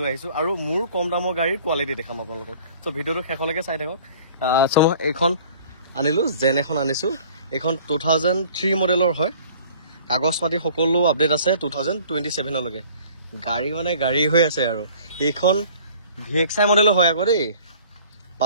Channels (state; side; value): inverted; both; correlation -0.50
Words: আহিছোঁ আৰু মোৰ কম দামৰ গাড়ীৰ কোৱালিটি দেখাম আপোনালোকক চ' ভিডিঅ'টো শেষলৈকে চাই থাকক চ' মই এইখন আনিলোঁ জেন এখন আনিছোঁ এইখন 2003 মডেলৰ হয় কাগজ পাতি সকলো আপডেট আছে 2027লৈকে গাড়ী মানে গাড়ী হৈ আছে আৰু এইখন VXI মডেলৰ হয় আকৌ দেই